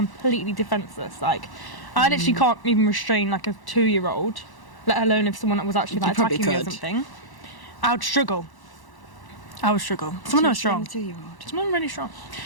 defenseless. Like, I literally can't even restrain like a 2-year-old, let alone if someone was actually like attacking me or something. I would struggle. Someone who was strong. Someone really strong.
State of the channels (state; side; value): late; right; 1.1 ms